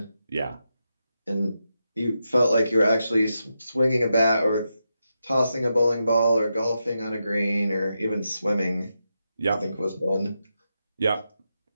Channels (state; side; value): inverted; both; correlation -0.87